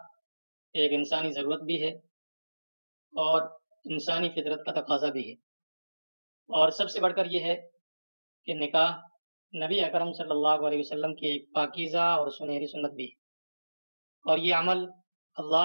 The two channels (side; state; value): both; inverted; correlation -1.00